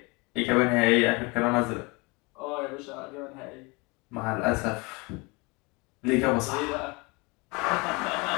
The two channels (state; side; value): quieter; right; 27.3 dB